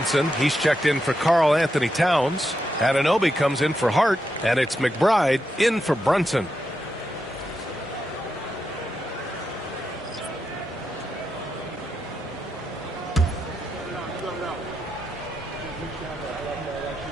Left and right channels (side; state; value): both; normal; correlation 0.85